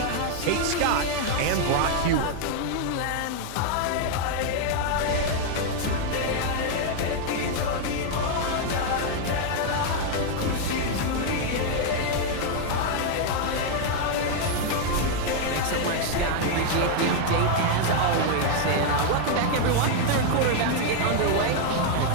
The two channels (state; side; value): different; both; correlation 0.00